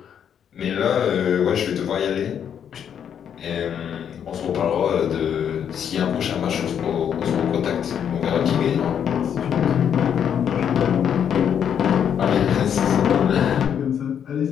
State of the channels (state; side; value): quieter; right; 8.5 dB